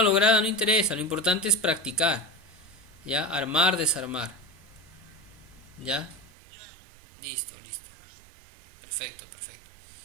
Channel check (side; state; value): left; drops out; at 6.3 s